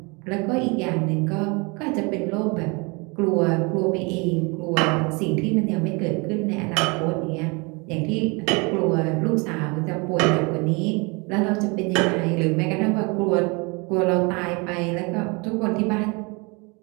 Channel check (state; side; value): quieter; left; 29.3 dB